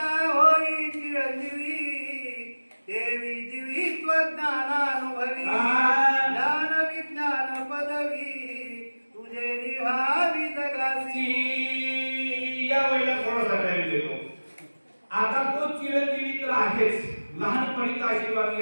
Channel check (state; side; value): inverted; both; correlation -1.00